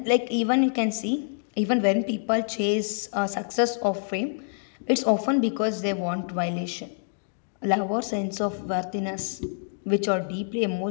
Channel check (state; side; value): silent; right; digital silence